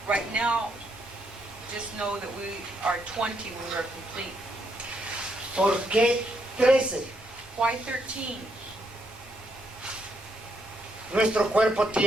Right now, just know that we are 20 when we are complete. ¿Por qué 13? Why 13? Nuestro cuerpo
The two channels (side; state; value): both; normal; correlation 0.76